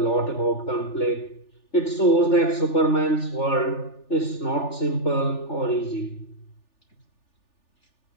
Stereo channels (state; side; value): late; right; 3.4 ms